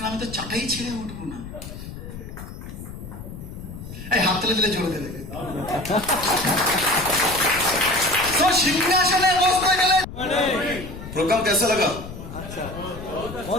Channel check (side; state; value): left; noise; rumble, 11 dB below the sound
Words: আমি তো চাটাই ছেড়ে উঠবো না। এই হাত তুলে দিলে জোরে দেবে। তো সিংহাসনে বসতে গেলে प्रोग्राम कैसा लगा?